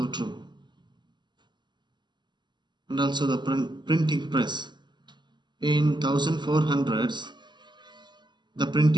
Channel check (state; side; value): late; left; 0.22 ms